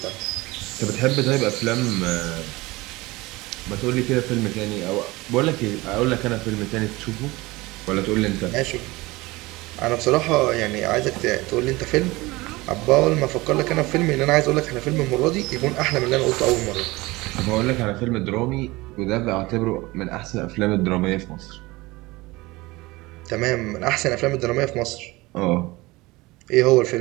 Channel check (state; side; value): quieter; left; 21.4 dB